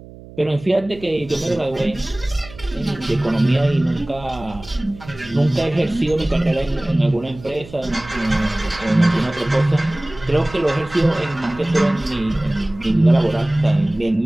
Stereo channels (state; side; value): noise; right; hum, 18 dB below the sound